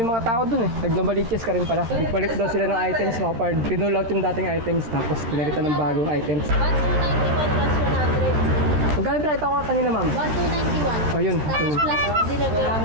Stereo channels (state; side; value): late; left; 13 ms